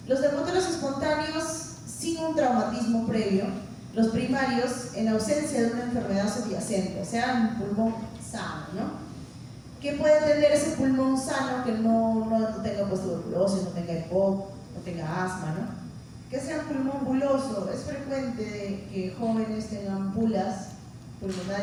Los neumotórax espontáneos sin un traumatismo previo, los primarios en ausencia de una enfermedad subyacente, o sea, un pulmón sano, ¿no? ¿Qué puede tener ese pulmón sano que no tenga pues, tuberculosis, no tenga EPOC, no tenga asma, ¿no? Que sea un pulmón buloso. Es frecuente que jóvenes tengan bulas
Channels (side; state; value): both; identical; correlation 1.00